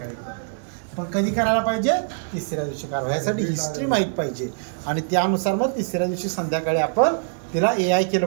करतो. पण कधी करायला पाहिजे, तिसऱ्या दिवशी करावं. ह्यासाठी हिस्ट्री माहीत पाहिजे आणि त्यानुसार मग तिसऱ्या दिवशी संध्याकाळी आपण तिला AI केलं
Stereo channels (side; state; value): left; silent; digital silence